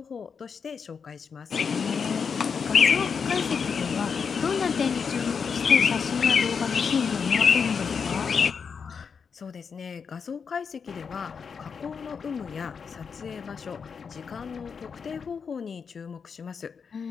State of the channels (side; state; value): right; quieter; 6.1 dB